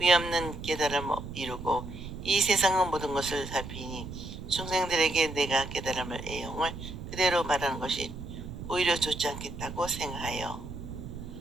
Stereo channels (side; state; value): right; noise; rumble, 10 dB below the sound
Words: 깨달음을 이루고 이 세상의 모든 것을 살피니 중생들에게 내가 깨달음을 애용을 그대로 말하는 것이 오히려 좋지 않겠다고 생각하여